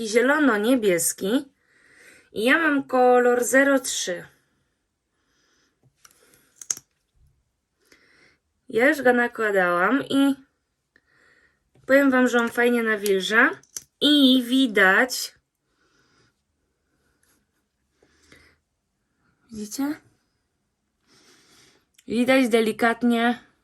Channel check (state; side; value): identical; both; correlation 1.00